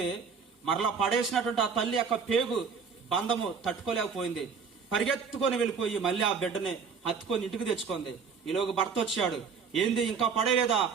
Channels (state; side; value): quieter; left; 5.9 dB